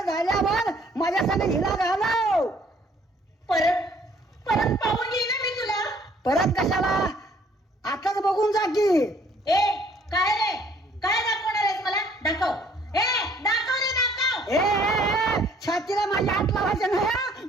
झाल्यावर माझ्या संग हिला घालव परत परत पाहून येईन ना मी तुला परत कशाला आताच बघून जा की ए काय रे काय दाखवणार आहेस मला दाखव ए दाखव रे दाखव ए छातीला माझ्या हात लावायचं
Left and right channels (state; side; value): normal; both; correlation 0.60